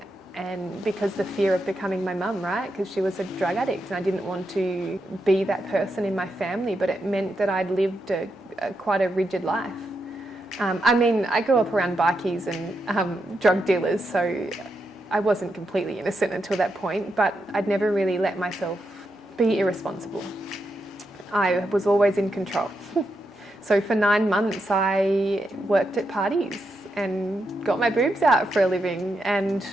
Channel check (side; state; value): both; normal; correlation 0.84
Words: And because the fear of becoming my mum, right? Because she was a drug addict and I didn't want to be that person in my family, but it meant that I'd lived quite a rigid life. I grew up around bikies and drug dealers, so I wasn't completely innocent until that point, but I'd never really let myself be irresponsible. I was always in control. So for 9 months, I worked at parties and got my boobs out for a living and